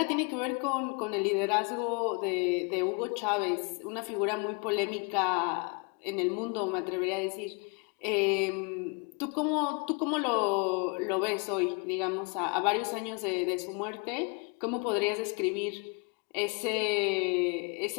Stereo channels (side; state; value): right; quieter; 33.2 dB